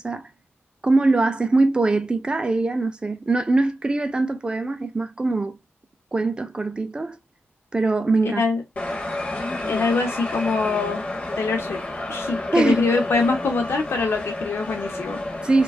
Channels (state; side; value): normal; both; correlation 0.86